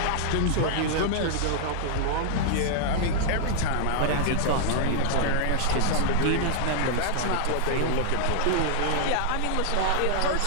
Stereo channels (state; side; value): different; both; correlation -0.01